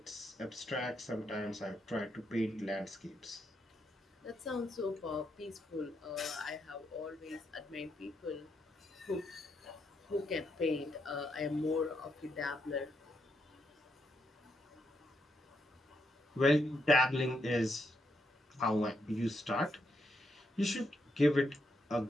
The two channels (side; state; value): both; normal; correlation 0.80